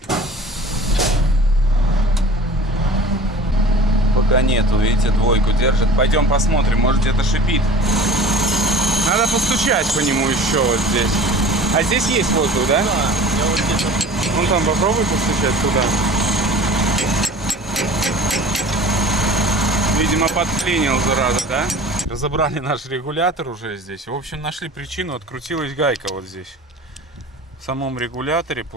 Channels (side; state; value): both; normal; correlation 0.42